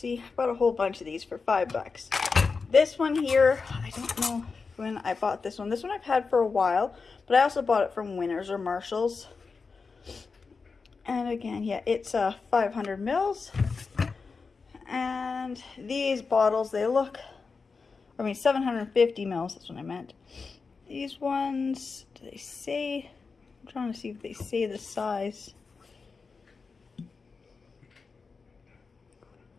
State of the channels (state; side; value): quieter; right; 4.7 dB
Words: I bought a whole bunch of these for $5. This one here, I don't know when I bought this one. This one I've had for a while, but I also bought it from Winners or Marshall's. And again, yeah, it's 500 mils. And these bottles, they look, 750 mils, that's what I meant. These ones, do they say, I'm trying to see if they say the size.